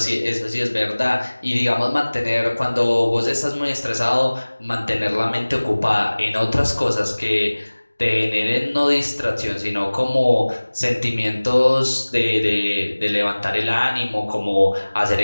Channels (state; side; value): inverted; both; correlation -1.00